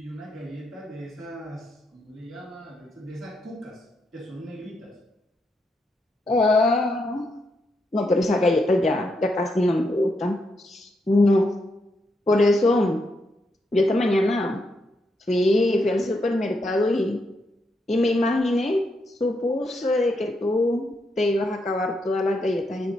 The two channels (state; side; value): normal; both; correlation 0.80